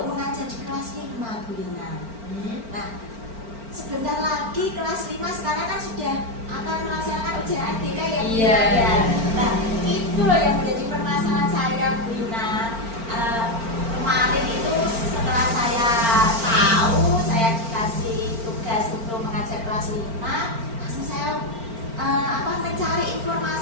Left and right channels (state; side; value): late; left; 4.4 ms